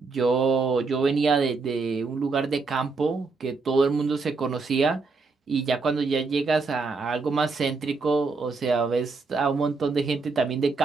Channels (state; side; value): quieter; left; 4.2 dB